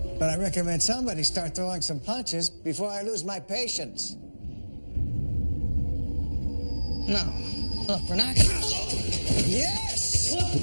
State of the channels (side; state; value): both; inverted; correlation -1.00